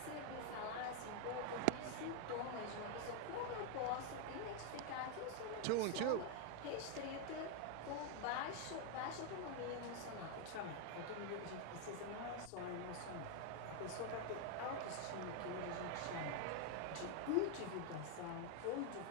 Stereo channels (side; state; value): both; different; correlation 0.01